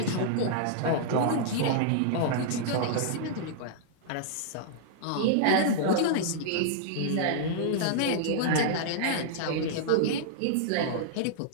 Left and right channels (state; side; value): different; both; correlation -0.01